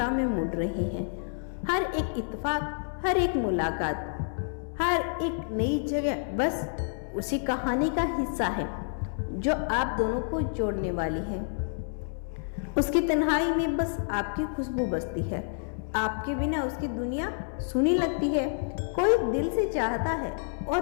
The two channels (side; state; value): right; silent; 59 dB below the other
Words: में मुड़ रहे हैं। हर एक इत्तेफाक, हर एक मुलाकात, हर एक नई जगह बस उसी कहानी का हिस्सा है जो आप दोनों को जोड़ने वाली है। उसकी तन्हाई में बस आपकी खुशबू बसती है। आपके बिना उसकी दुनिया सुनी लगती है। कोई दिल से चाहता है